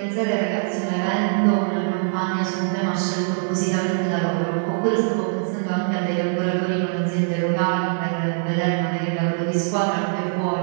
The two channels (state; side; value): silent; left; 64 dB below the other